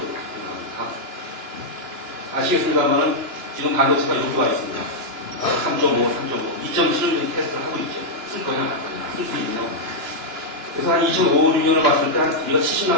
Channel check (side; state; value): left; late; 2.9 ms